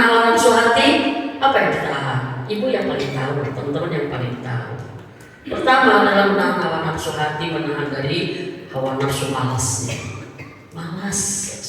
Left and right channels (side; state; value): both; identical; correlation 1.00